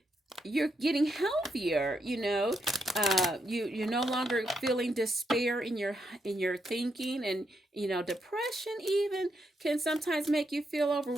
you're getting healthier. You're no longer feeling despair in your thinking, and depression even can sometimes make you feel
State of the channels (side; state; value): both; normal; correlation 0.80